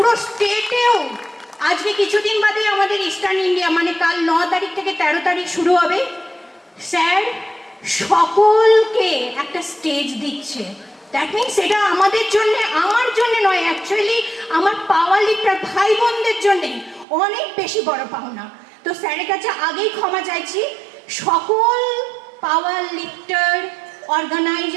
স্টেটেও আজকে কিছুদিন বাদে আমাদের ইস্টার্ন ইন্ডিয়া মানে কাল 9 তারিখ থেকে 13 তারিখ শুরু হবে, স্যার সকলকে একটা স্টেজ দিচ্ছে। দ্যাট মিনস এটা আমাদের জন্য, আমার জন্য নয়, অ্যাকচুয়ালি আমার পাওয়ার লিফটার ভাই বোনদের জন্যে অনেক বেশি বড় পাওনা। তো স্যারের কাছে আগেই ক্ষমা চাইছি, সকল পাওয়ার লিফটার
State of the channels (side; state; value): left; drops out; at 17.1 s